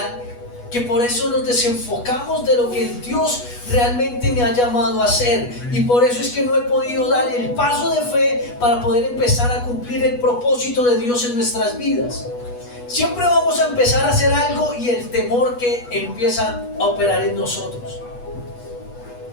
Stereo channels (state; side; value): late; right; 8.2 ms